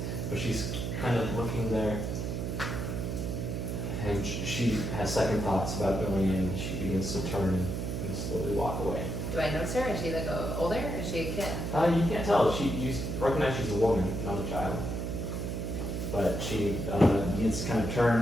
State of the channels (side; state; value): right; noise; hum, 2 dB below the sound